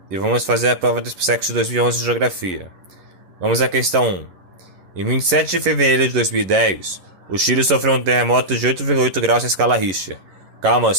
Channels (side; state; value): left; late; 11 ms